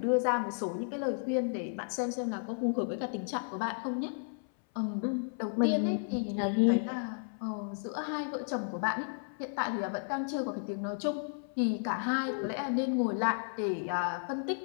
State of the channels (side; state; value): right; silent; 56 dB below the other